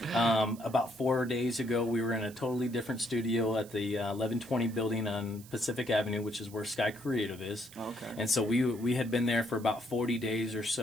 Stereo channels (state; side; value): noise; right; hiss, 20 dB below the sound